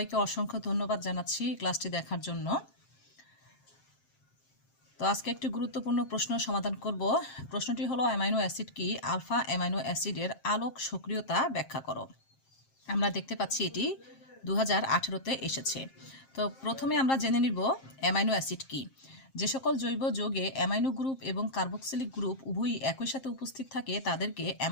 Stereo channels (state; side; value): late; right; 7.5 ms